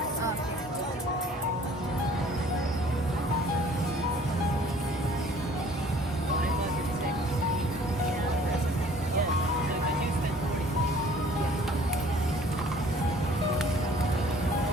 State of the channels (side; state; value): both; normal; correlation 0.54